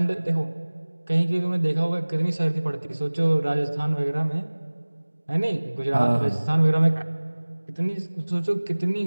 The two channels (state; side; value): inverted; both; correlation -1.00